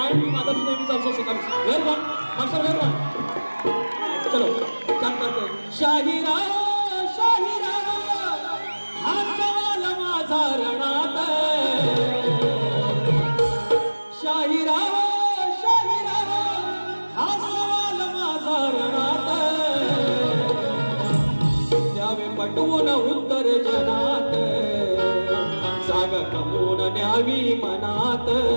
father's name is also Sakaram. Where one? Master, where one? चलो start करते. शाहिरा शाहिरा हा सवाल माझा रणात. शाहिरा शाहिरा हा सवाल माझा रणात. द्यावे पटवून उत्तर जनात, जागा कमवून न्यावी मनात.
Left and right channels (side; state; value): both; inverted; correlation -1.00